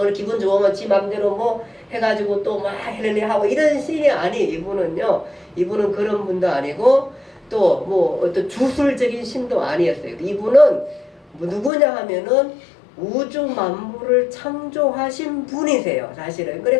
기분 좋으면 지 맘대로 해가지고 또 막 해내내 하고 이런 신이 이분은요. 이분은 그런 분도 아니고 또 어떤 주술적인 신도 아니었어요. 이분은 누구냐 하면은 우주 만물을 창조하신 분이세요. 사실은.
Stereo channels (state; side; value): drops out; right; at 11.7 s